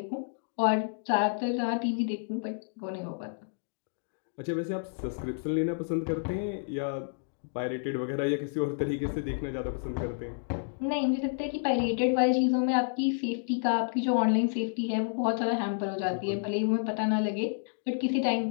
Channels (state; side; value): silent; right; digital silence